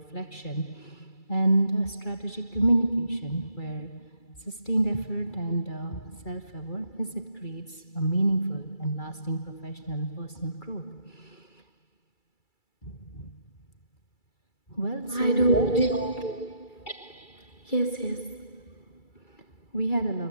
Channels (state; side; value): late; right; 2.3 ms